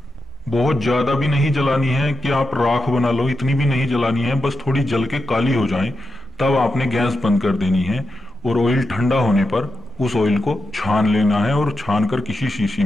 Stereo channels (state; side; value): normal; both; correlation 0.87